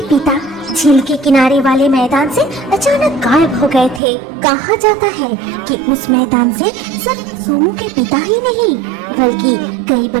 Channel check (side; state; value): left; drops out; at 4.0 s